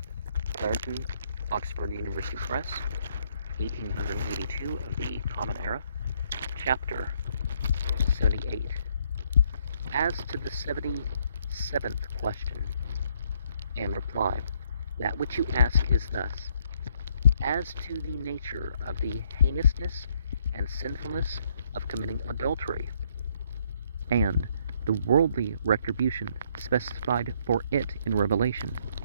Clarendon, Oxford University Press, 1882 of the Common Era, Chapter 78. As to the 77th question and reply, that which you ask is thus: as to the nature of the heinousness and sinfulness of committing adultery, and the worldly retribution specified for it in Revelation,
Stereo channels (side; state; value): both; inverted; correlation -0.69